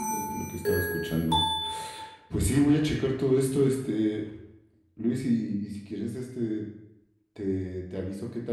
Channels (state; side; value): identical; both; correlation 1.00